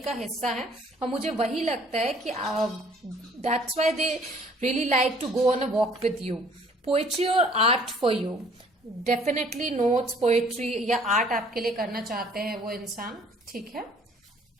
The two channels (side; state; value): both; normal; correlation 0.57